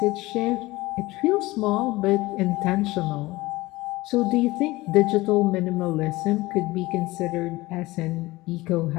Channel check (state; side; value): quieter; right; 20.0 dB